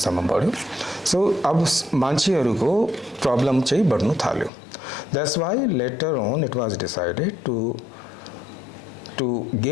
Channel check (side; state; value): right; drops out; at 4.5 s